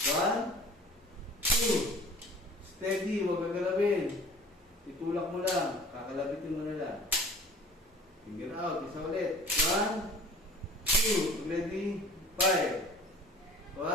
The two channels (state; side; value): normal; both; correlation 0.46